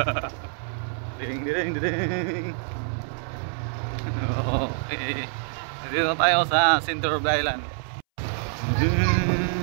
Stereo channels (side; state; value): left; silent; 61 dB below the other